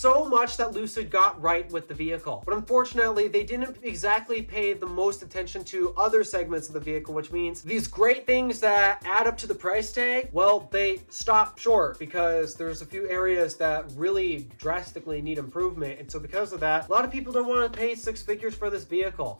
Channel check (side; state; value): both; inverted; correlation -1.00